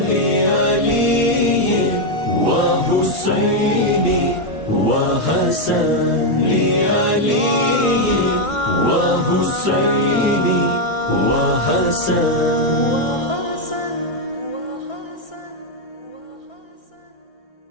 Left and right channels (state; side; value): late; right; 1.6 ms